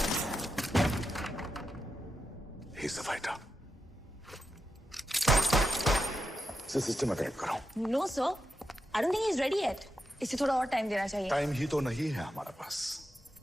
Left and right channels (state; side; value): normal; both; correlation 0.86